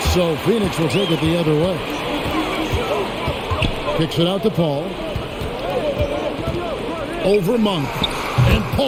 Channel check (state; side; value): identical; both; correlation 1.00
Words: So Phoenix will take it the other way. Kicks it out to Paul. Over Monk. And